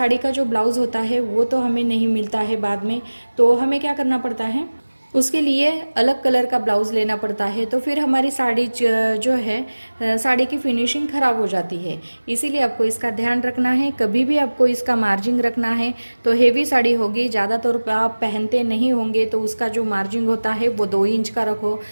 का जो ब्लाउज़ होता है वो तो हमें नहीं मिलता है बाद में, तो हमें क्या करना पड़ता है, उसके लिए अलग कलर का ब्लाउज़ लेना पड़ता है। तो फिर हमारी साड़ी जो है, साड़ी की फिनिशिंग ख़राब हो जाती है। इसीलिए आपको इसका ध्यान रखना है, कभी भी आपको इसका मार्जिन रखना है। तो हेवी साड़ी होगी, ज़्यादातर आप पहनते नहीं होंगे, तो उसका जो मार्जिन होता है वो 2 इंच का रखो,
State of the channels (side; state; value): both; inverted; correlation -1.00